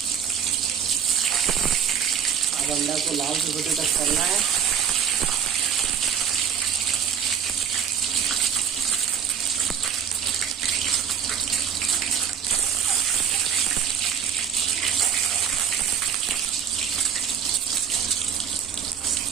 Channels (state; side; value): quieter; left; 7.8 dB